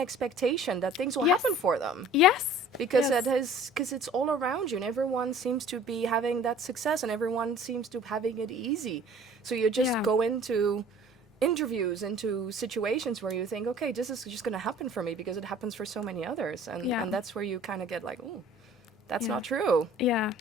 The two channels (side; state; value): both; normal; correlation 0.49